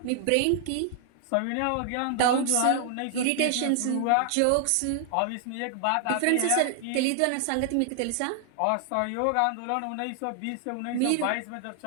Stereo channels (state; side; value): different; both; correlation 0.00